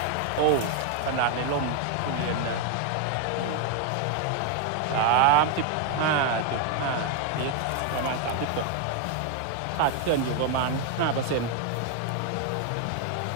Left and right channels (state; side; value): different; both; correlation 0.01